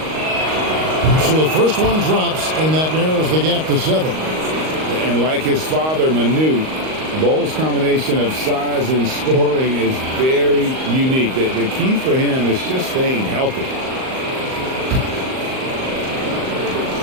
So the first one drops, and that narrows the gap to 7. And like his father, Manu, Bol's combination of size and scoring is very unique. The key for him is just staying healthy.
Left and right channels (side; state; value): left; late; 38 ms